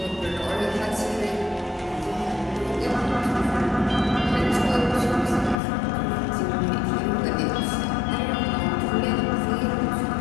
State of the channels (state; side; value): drops out; right; at 5.6 s